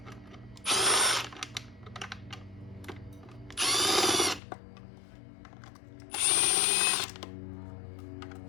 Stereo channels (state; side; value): drops out; right; at 4.4 s